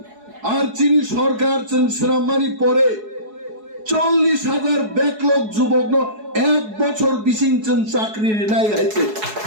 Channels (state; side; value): late; left; 4.7 ms